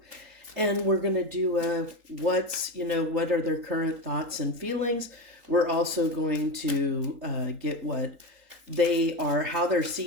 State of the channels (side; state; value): left; late; 3.8 ms